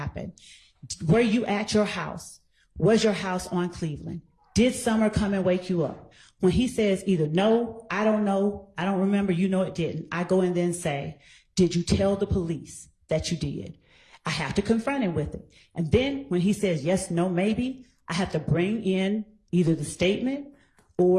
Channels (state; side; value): identical; both; correlation 1.00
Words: Were you at your house? Was your house on Cleveland? Did Summer come and wake you up? When he says either no, I don't know, I don't remember, you know it didn't, I go and then say, did you tell the police that you did. I have to confront him with it. And then when he says yes, no, maybe, I have to bring in either the statement